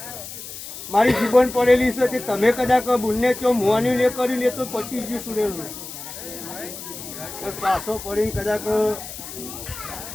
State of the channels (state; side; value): noise; left; hiss, 11 dB below the sound